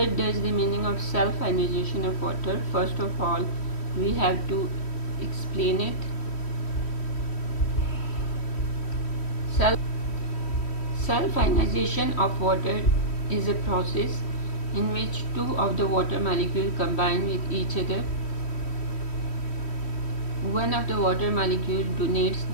does the meaning of self-ionization of water? First of all, we have to explain it. Self-ionization of water is a process in which two of the water molecules combine with each other. One of the water molecules donates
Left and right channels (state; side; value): late; right; 3.1 ms